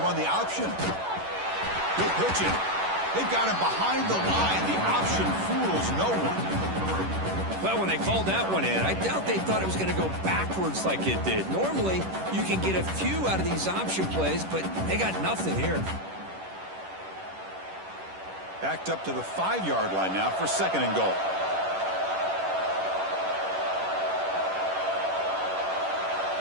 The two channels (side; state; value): left; late; 11 ms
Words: run the option. Good pitching. They've got him behind the line. The option fools no one. Well, when they called that one in, I doubt they thought it was going to go backwards like it did. Normally, you can get a few out of these option plays, but they got nothing here. Backed up to the 5-yard line now for 2nd and goal.